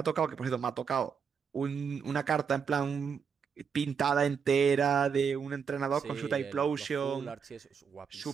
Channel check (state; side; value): quieter; left; 6.6 dB